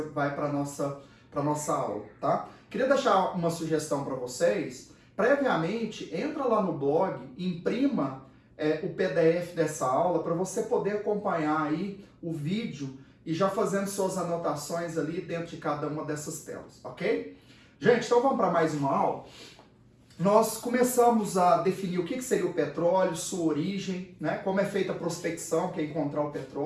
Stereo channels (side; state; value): both; identical; correlation 1.00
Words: vai para a nossa aula, tá? Queria deixar uma sugestão para vocês. Previamente, entra lá no blog, imprima o PDF dessa aula para você poder acompanhar aí o vídeo e já fazendo suas anotações ali dentro de cada uma dessas telas, ok? Gente, então vamos para mais uma aula. Nós começamos a definir o que seria o petróleo, sua origem, né? Como é feita a prospecção, que é encontrar o